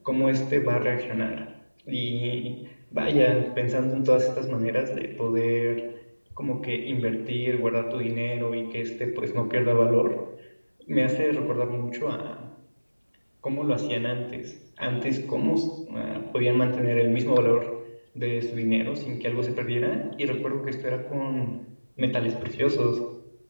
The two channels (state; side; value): inverted; both; correlation -1.00